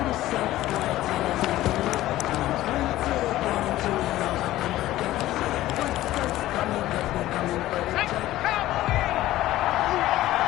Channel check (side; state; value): right; quieter; 15.3 dB